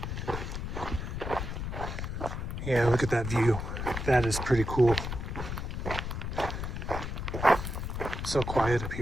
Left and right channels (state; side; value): noise; left; rumble, 4 dB below the sound